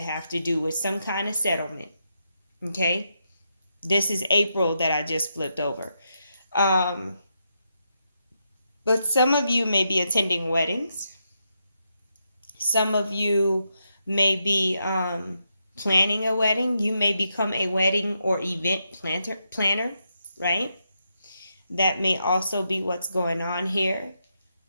to do with some kind of settlement, okay? This is April that I just flipped over. But some of you may be attending weddings. Some of you may be planning a wedding. You may become a wedding or event planner, right? That may also be what's going on here.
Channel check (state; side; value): inverted; both; correlation -0.83